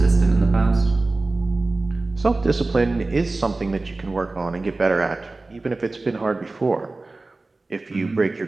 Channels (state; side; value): quieter; left; 3.3 dB